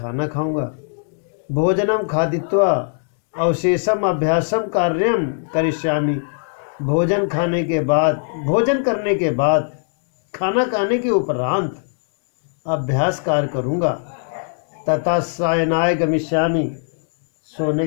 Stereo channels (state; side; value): silent; right; digital silence